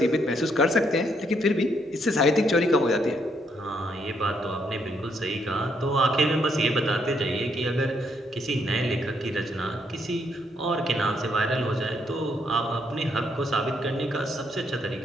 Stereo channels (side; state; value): both; normal; correlation 0.73